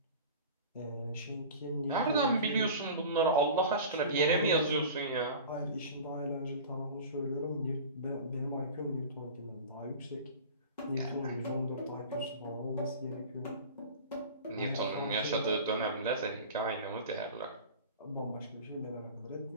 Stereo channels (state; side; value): inverted; both; correlation -0.37